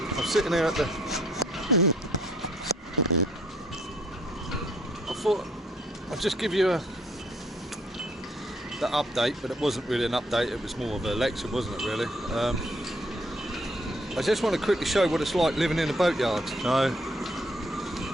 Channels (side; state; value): both; normal; correlation 0.66